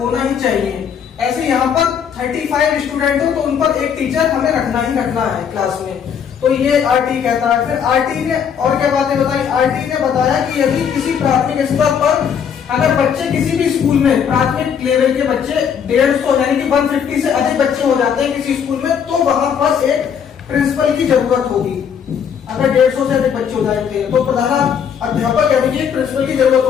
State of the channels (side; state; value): right; quieter; 7.6 dB